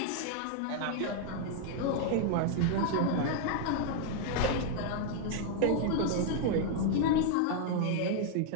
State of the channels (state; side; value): different; both; correlation 0.00